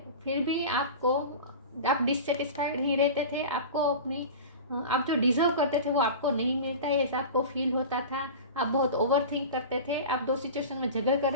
फिर भी आप डिससेटिस्फाइड ही रहते थे। आपको अपनी आप जो डिजर्व करते थे वो आपको नहीं मिलता है, ऐसा आपको फील होता था। आप बहुत ओवर थिंक करते थे, आप दो सिचुएशन में झगड़ कर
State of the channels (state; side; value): inverted; both; correlation -0.32